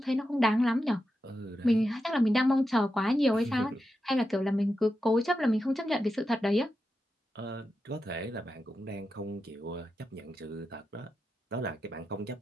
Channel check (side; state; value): both; normal; correlation 0.89